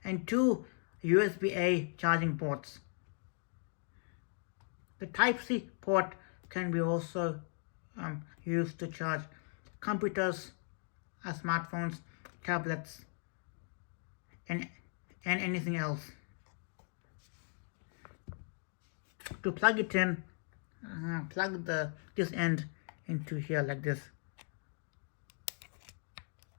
and two USB-A charging ports. The Type-C port can be also used to charge computers, smartphones, tablets, and anything else. To plug it in, plug this end into here like this.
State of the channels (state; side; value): silent; right; 52 dB below the other